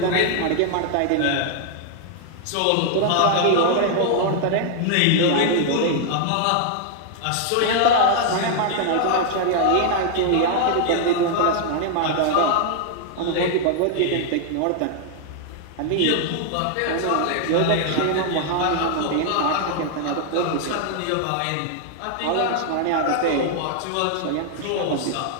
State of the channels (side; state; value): both; different; correlation 0.00